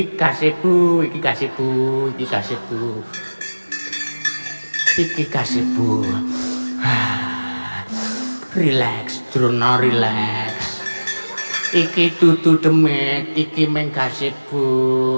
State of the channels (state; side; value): inverted; both; correlation -1.00